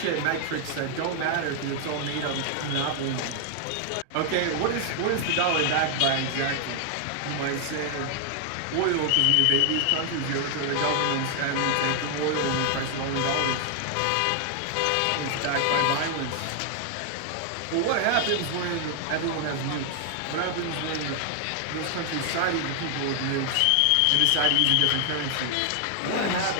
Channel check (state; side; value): different; both; correlation 0.00